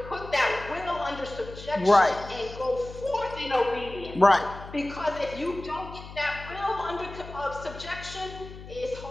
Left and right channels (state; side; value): noise; left; hum, 14 dB below the sound